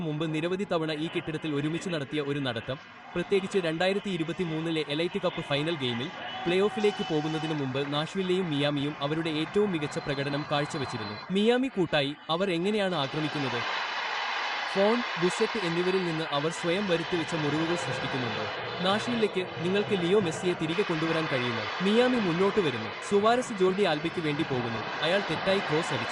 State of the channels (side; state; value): both; identical; correlation 1.00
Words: മുമ്പ് നിരവധി തവണ ഈ കെട്ടിടത്തിൽ ഒരുമിച്ച് നടത്തിയ ഒരു നടത്തം, പ്രത്യേകിച്ച് 2023 എലൈറ്റ് കപ്പ് ഫൈനൽ ഗെയിമിൽ പ്ലേ ഓഫിലേക്ക് പോകുന്നതിനു മുമ്പ് നാഷ്വില്ലെയും മിയാമിയും അവരുടെ ഏറ്റവും മികച്ച പ്രകടനം കാഴ്ചവെച്ചിരുന്നു. മിയാമി കൂട്ടായി അവർ എങ്ങനെയാണ് ആക്രമിക്കുന്നത്? ഫോൺ, ബുസെറ്റ് എന്നിവരിൽ നിന്ന് അവർ സ്വയം വരുത്തിവെച്ച മുറിവുകൾ സൃഷ്ടിക്കുന്നുണ്ടോ? നാഷ്വില്ലേക്ക് നിങ്ങൾക്ക് ലിയോ മെസ്സിയെ തിരികെ കൊണ്ടുവരാൻ കഴിയുമോ? മിയാമി മുന്നോട്ട് വരുന്നു. സുവാരസ് ജോർഡി ആൽബയ്ക്ക് വേണ്ടി പോകുന്നു. അയാൾ തെറ്റായി ക്രോസ്